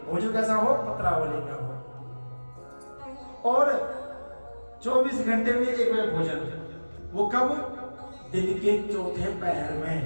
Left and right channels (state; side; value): inverted; both; correlation -1.00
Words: भोजन कैसा हो? पत्रावली का हो, और 24 घंटे में एक बार भोजन। वो कब? दिन के चौथे पहर में।